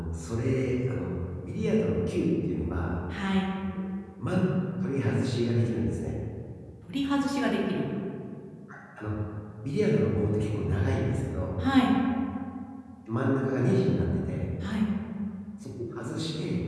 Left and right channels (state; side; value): identical; both; correlation 1.00